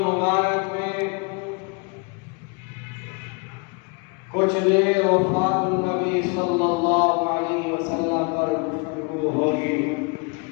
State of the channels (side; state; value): right; quieter; 32.1 dB